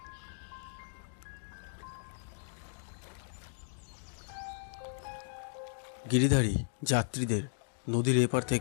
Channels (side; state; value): right; silent; digital silence